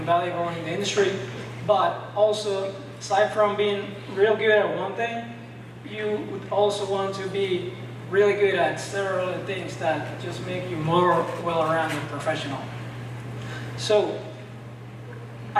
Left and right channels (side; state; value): both; identical; correlation 1.00